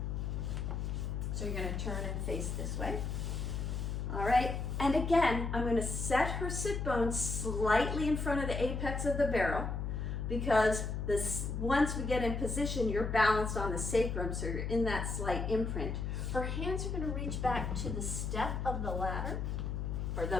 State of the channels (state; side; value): noise; left; hum, 2 dB below the sound